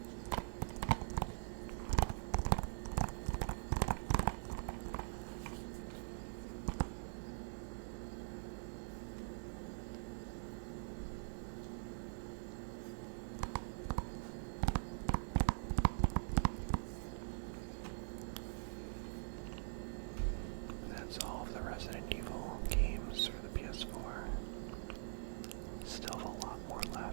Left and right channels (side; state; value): left; silent; digital silence